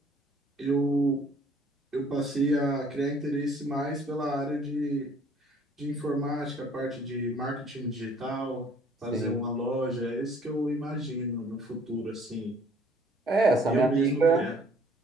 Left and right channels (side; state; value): both; normal; correlation 0.58